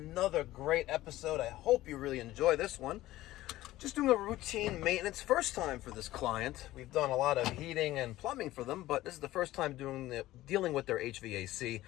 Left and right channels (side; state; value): right; quieter; 16.0 dB